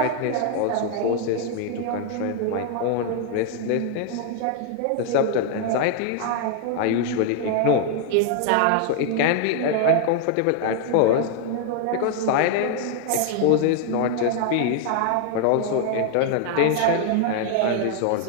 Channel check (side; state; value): both; different; correlation 0.00